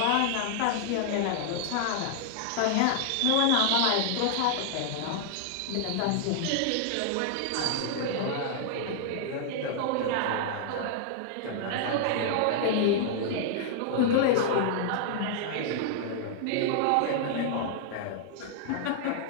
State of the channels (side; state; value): both; different; correlation -0.01